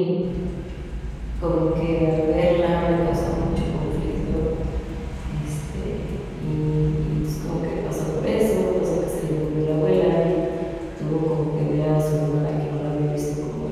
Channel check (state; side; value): identical; both; correlation 1.00